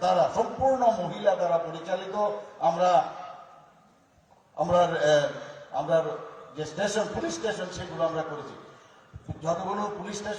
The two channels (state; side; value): identical; both; correlation 1.00